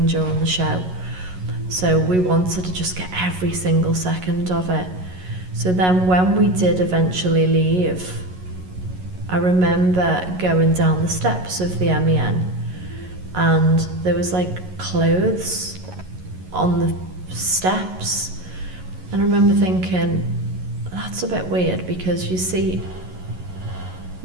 during the show. So we wanted to just get every single second of it. So then when we did eventually leave, I remember going down the steps of the MEN, and there was like clothes on the steps, and I remember thinking, that's a bit weird, because you see,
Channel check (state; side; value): late; left; 11 ms